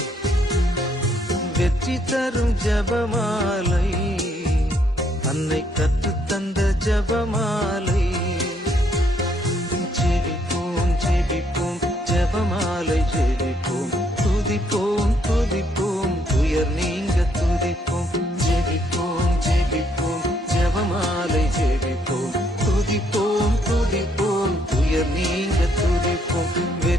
வெற்றி தரும் ஜபமாலை, அன்னை கற்றுத்தந்த ஜபமாலை. ஜெபிப்போம் ஜெபிப்போம் ஜபமாலை ஜெபிப்போம், துதிப்போம் துதிப்போம் துயர் நீங்க துதிப்போம். ஜெபிப்போம் ஜெபிப்போம் ஜபமாலை ஜெபிப்போம், துதிப்போம் துதிப்போம் துயர் நீங்க துதிப்போம்.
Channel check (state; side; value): normal; both; correlation 0.70